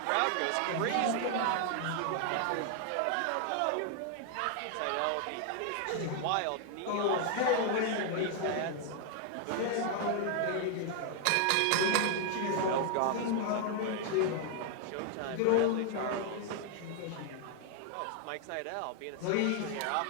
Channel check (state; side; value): different; both; correlation 0.00